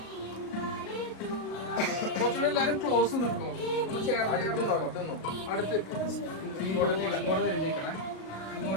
കുറച്ചുകൂടെ എല്ലാരും ക്ലോസ് നിൽക്കോ. അടുത്ത് ഇങ്ങോട്ട് തിരിഞ്ഞിരിക്കണേ.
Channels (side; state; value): right; late; 37 ms